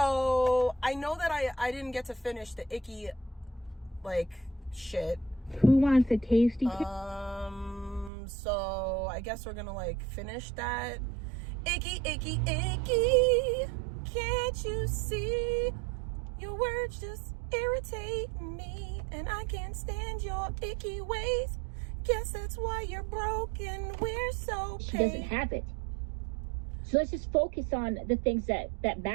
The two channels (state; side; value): drops out; left; at 8.1 s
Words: I know that I didn't get to finish the Icky, like, shit. Who wants a tasty? So I guess we're gonna, like, finish that. Icky, icky, icky. Can't you see? Your words just irritate me, and I can't stand your icky ways. Guess that's why you're broken. We're so paid. She doesn't have it. So let's just focus on the things that